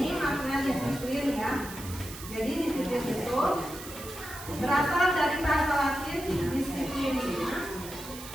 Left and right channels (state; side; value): noise; right; hiss, 13 dB below the sound